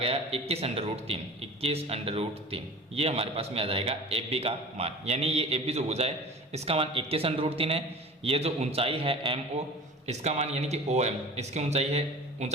21√3, 21√3। ये हमारे पास में आ जाएगा ए बी का मान, यानी ये ए बी जो भुजा है इसका मान 21√3 है। ये जो ऊंचाई है एम ओ, इसका मान यानी कि ओ एम, इसकी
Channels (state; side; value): normal; both; correlation 0.40